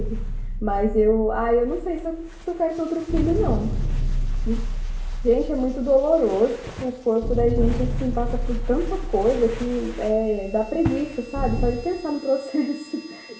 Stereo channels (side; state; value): both; identical; correlation 1.00